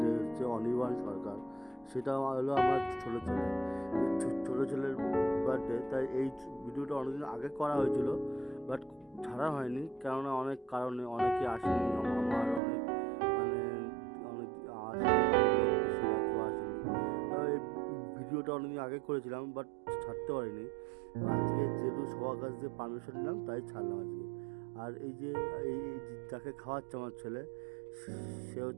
হচ্ছে অনির্বাণ সরকার। সেটা হলো আমার ছোটো ছেলে, ছোটো ছেলের বার্থডে। তাই এই ভিডিওটা অনেকদিন আগে করা হয়েছিল, বাট ছাড়া হয়নি, কেননা অনেক কারণে অনেকে আসেনি। আমার অনেক মানে অনেক আসেনি, বেশিরভাগ কেউ আসেনি। এই ভিডিওটা অনেকদিন আগে করেছিলাম, বাট ছাড়তে পারিনি। আজকে যেহেতু সবার কাছ থেকে পারমিশন নিলাম, তাই ছাড়লাম আজকে। আর এই যে যাকে খাওয়াচ্ছে আমার ছেলে, সে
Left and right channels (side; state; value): left; drops out; at 12.6 s